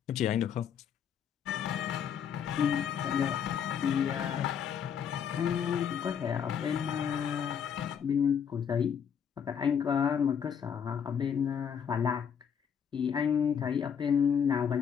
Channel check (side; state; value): right; quieter; 7.8 dB